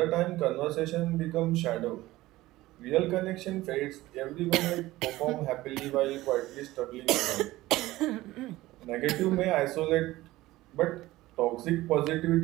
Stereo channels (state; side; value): quieter; left; 17.5 dB